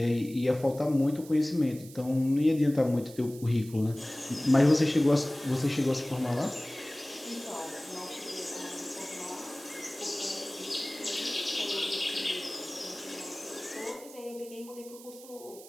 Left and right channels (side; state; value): right; noise; hiss, 18 dB below the sound